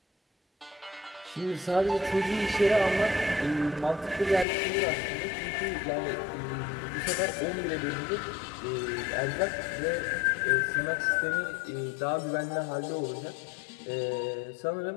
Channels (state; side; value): drops out; right; at 4.5 s